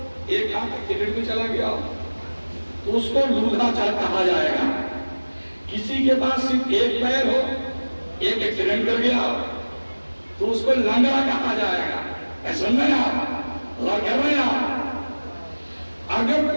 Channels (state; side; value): inverted; both; correlation -1.00